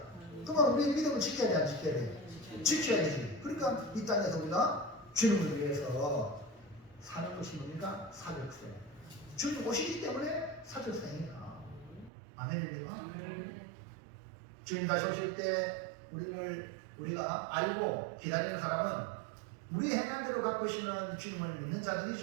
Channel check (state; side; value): drops out; left; at 12.1 s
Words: 그러면 우리 믿음을 지켜야 돼, 안 지켜야 돼? 지켜야 되지. 그러니까 이 땅에서 우리가 주님을 위해서 사는 것이 뭡니까? 사적생. 주님 오시기 때문에 사적생이야. 아멘입니까? 주님 다시 오실 때 우리가 알고 기다리는 사람은 우리 행한 대로 갖고 오시는 주님을 믿는